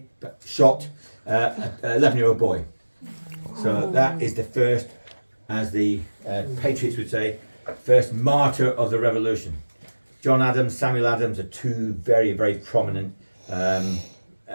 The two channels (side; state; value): both; inverted; correlation -1.00